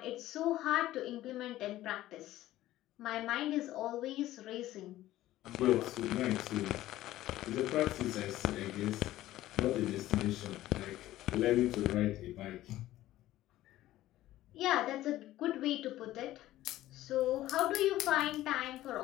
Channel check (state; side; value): quieter; right; 15.0 dB